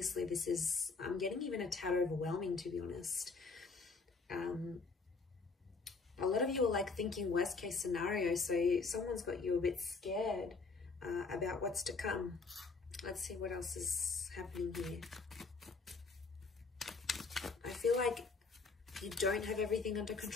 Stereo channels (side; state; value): right; quieter; 4.3 dB